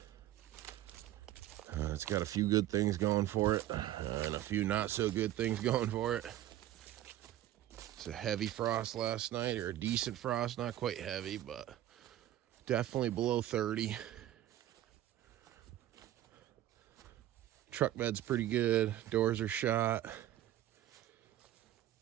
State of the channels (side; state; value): left; quieter; 13.3 dB